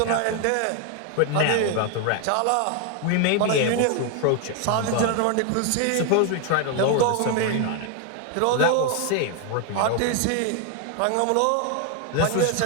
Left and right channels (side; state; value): both; different; correlation 0.01